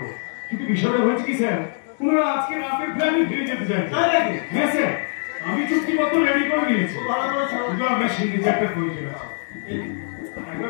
কিন্তু বিষয়টা হয়েছে কি স্যার, ওনারা আজকে রাতে ফ্লাইটে ফিরে যেতে চাই। হ্যাঁ স্যার, আমি চুক্তিপত্র রেডি করে নিয়েছি। ভালো করেছো। শুধু আপনার সিগনেচারটা প্রয়োজন আছে।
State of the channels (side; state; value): right; silent; digital silence